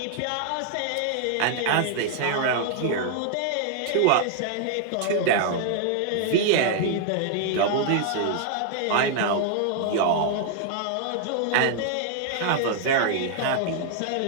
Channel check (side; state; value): both; different; correlation 0.00